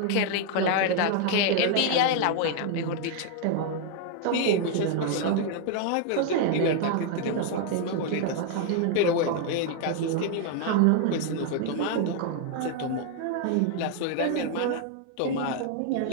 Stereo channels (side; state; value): both; different; correlation 0.00